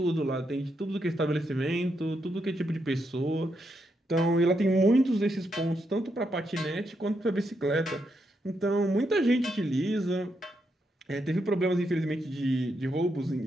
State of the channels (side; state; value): both; normal; correlation 0.81